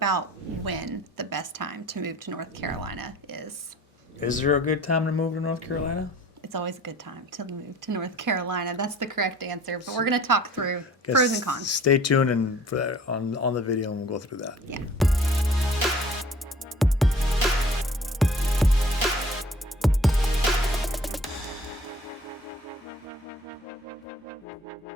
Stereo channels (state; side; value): normal; both; correlation 0.51